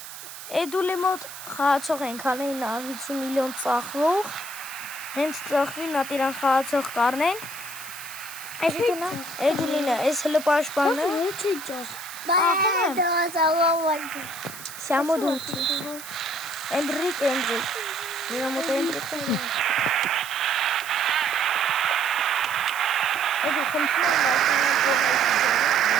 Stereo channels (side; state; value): right; noise; hiss, 13 dB below the sound